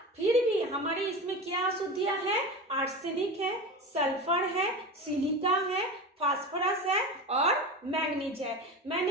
फिर भी हमारे इसमें क्या अशुद्धियां है, आर्सेनिक है, सल्फर है, सिलिका है, फास्फोरस है और मैग्नीज है।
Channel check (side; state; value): both; normal; correlation 0.27